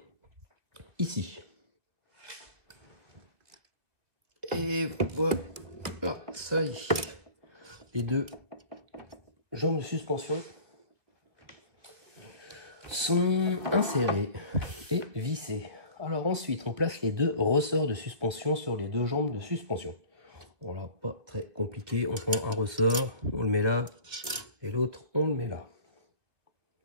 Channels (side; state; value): left; late; 2.1 ms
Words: ici. Et voilà, ça y est. Les deux jambes de suspension sont insérées et vissées. Alors ensuite, on place les deux ressorts de suspension sur les deux jambes de suspension. Voilà, pas très compliqué. On prend un ressort, on le met là, et l'autre, on le met là.